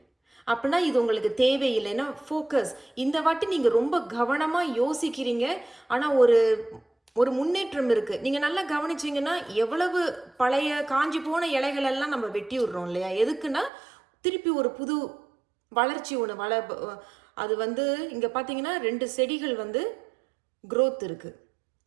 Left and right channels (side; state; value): left; drops out; at 13.7 s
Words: அப்படின்னா இது உங்களுக்கு தேவையில்லை. ஏன்னா ஃபோக்கஸ், இந்த வாட்டி நீங்கள் ரொம்ப கவனமாக யோசிக்கிறீங்க. ஆனால் ஒரு முன்னேற்றம் இருக்குது. நீங்கள் நல்லா கவனிச்சிங்கன்னா எவ்வளவு பழைய காஞ்சி போன இலைகள் எல்லாம் நம்ம வெட்டி விடுறோம் இல்லையா? எதுக்குன்னா திருப்பி ஒரு புது வளர்ச்சி ஒன்று அது இங்கே பார்த்தீங்கன்னா 2 செடிகள் growth இருக்குது,